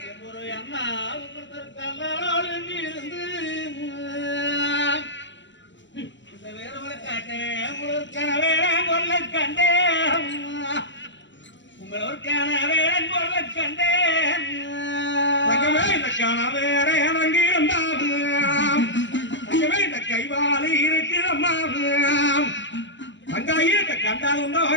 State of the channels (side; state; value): right; late; 0.54 ms